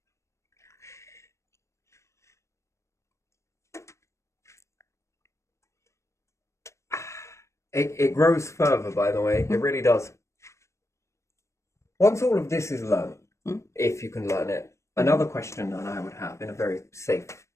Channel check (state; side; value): late; right; 0.14 ms